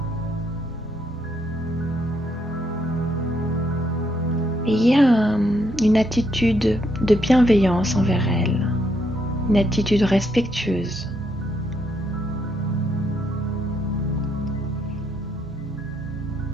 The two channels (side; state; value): both; normal; correlation 0.75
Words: Ayez une attitude de bienveillance envers elle, une attitude respectueuse.